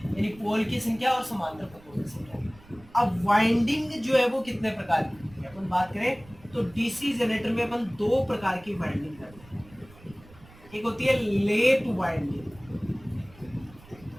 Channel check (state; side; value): noise; right; rumble, 23 dB below the sound